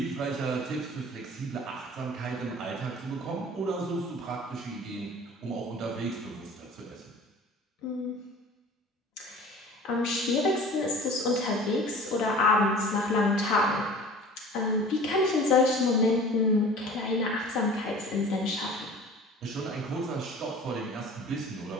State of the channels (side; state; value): both; normal; correlation 0.43